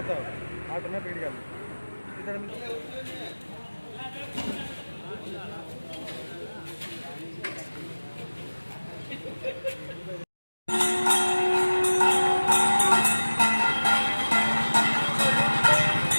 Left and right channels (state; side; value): inverted; both; correlation -1.00